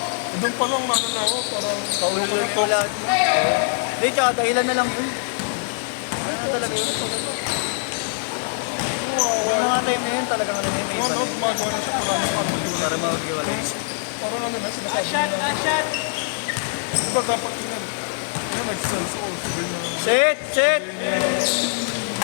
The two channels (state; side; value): silent; right; 63 dB below the other